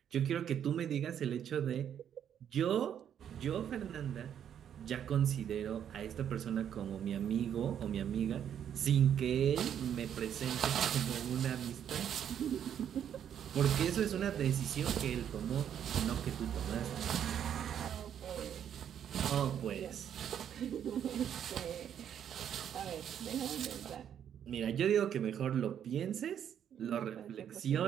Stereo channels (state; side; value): quieter; left; 9.2 dB